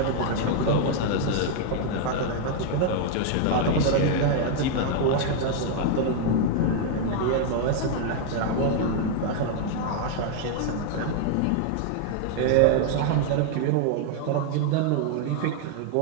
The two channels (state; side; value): different; both; correlation 0.00